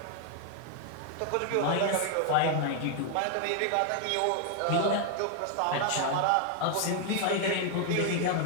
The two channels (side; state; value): both; different; correlation 0.00